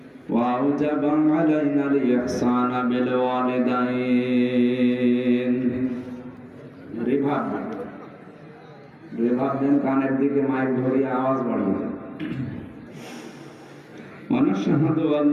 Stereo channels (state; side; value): identical; both; correlation 1.00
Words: ওয়া আওজাবা আলাইনাল ইহসানা বিল ওয়ালিদাইন। রিভাব দেন, কানের দিকে মাইক ধরিয়ে আওয়াজ বাড়িয়ে। ونشهد أن